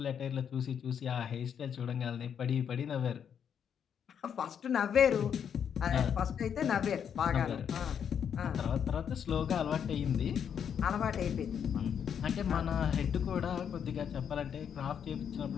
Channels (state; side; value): quieter; right; 8.0 dB